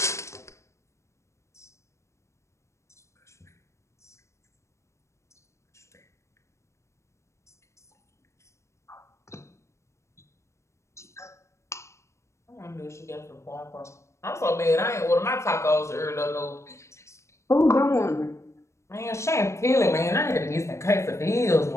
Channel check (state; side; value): late; right; 0.14 ms